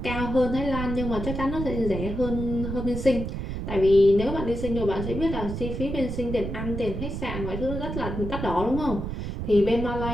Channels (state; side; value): noise; right; rumble, 5 dB below the sound